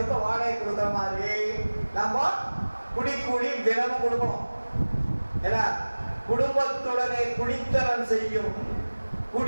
வாடகை கொடுக்குற மாதிரி நம்ம குடிக்கூலி தினமும் கொடுக்கணும். ஏன்னா குடும்பத்துடனே குடித்தனம் செய்யும்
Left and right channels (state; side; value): inverted; both; correlation -1.00